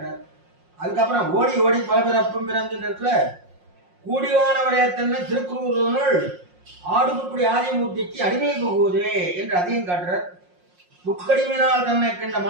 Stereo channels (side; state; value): left; late; 5.6 ms